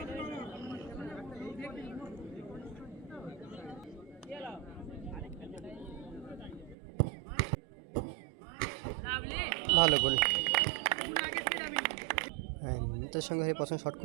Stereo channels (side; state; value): left; drops out; at 6.8 s